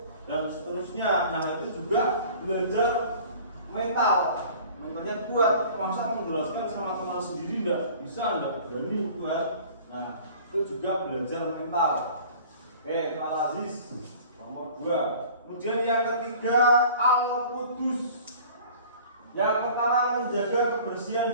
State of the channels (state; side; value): inverted; both; correlation -0.46